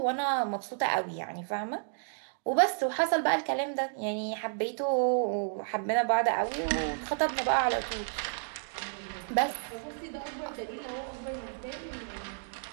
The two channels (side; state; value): left; silent; digital silence